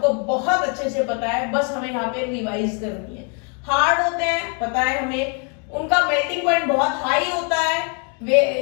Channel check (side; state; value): right; quieter; 38.6 dB